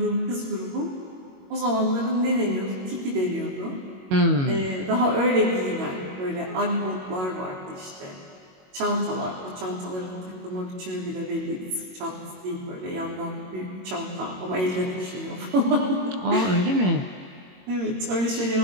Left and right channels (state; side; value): late; left; 22 ms